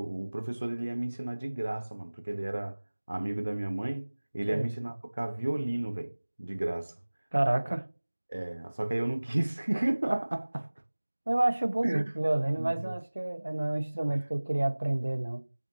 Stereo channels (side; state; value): both; inverted; correlation -1.00